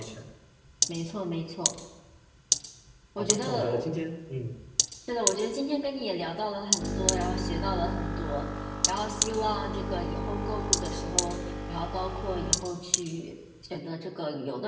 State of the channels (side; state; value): both; identical; correlation 1.00